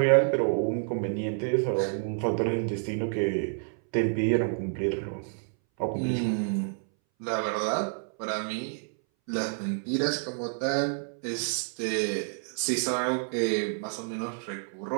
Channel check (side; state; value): left; silent; 59 dB below the other